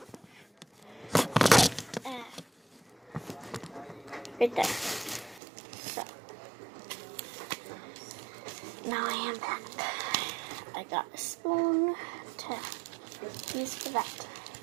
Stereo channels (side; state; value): left; drops out; at 5.4 s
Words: Right there. So. Now I am back. I got a spoon to use for that.